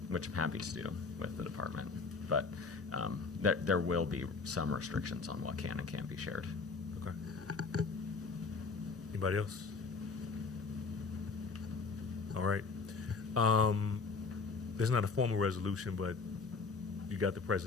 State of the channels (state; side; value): quieter; right; 4.5 dB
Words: which I'm happy to do with the department. But there will be some restrictions on what can and can't be shared. Okay. Anybody else? All right. There's not a formal resolution, but you got the